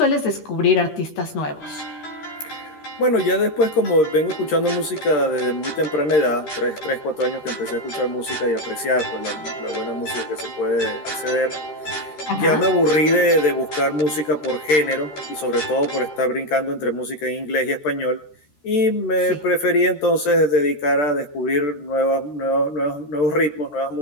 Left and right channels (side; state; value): right; late; 13 ms